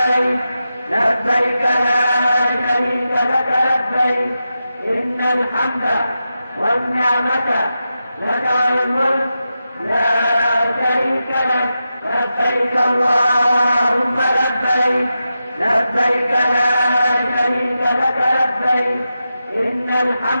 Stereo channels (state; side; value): inverted; both; correlation -0.90